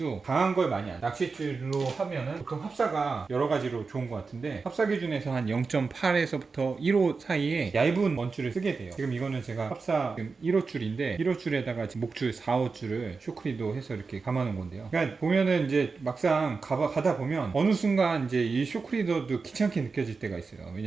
강한 걸 많이 안, 낚싯줄로 하면은 보통 합사가 여러 가지로 좋은 것 같은데, 합사 기준에서 한 0.8에서부터 1호 사이에 얇은 원줄을 쓰게 돼요. 지금 이거는 제가 합사 지금 1호 줄인데, 1호 줄에다가 지금 목줄 4호 줄을 쇼크리도 해서 이렇게 감아놓은 건데요. 그러니까 보면은 이제 막상 가다 보면 어느 순간 이제 이 쇼크리더도 귀찮게 느껴질 때가 있어요.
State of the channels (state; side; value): quieter; left; 4.5 dB